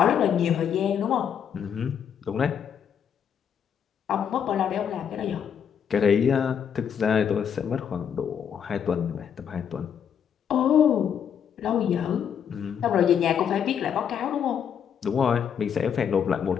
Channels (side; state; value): right; quieter; 8.1 dB